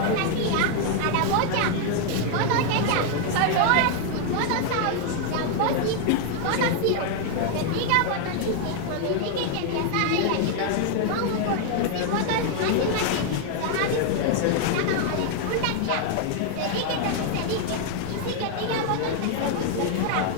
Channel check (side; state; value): both; different; correlation 0.00